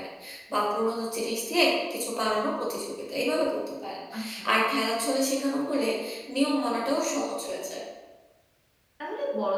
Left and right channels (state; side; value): identical; both; correlation 1.00